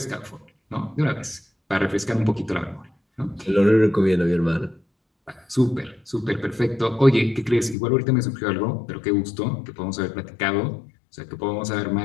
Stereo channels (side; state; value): right; drops out; at 7.8 s